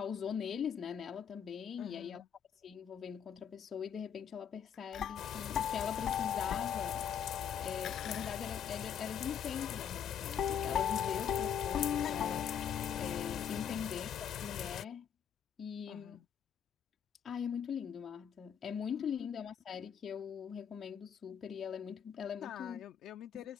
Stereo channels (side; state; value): right; quieter; 8.2 dB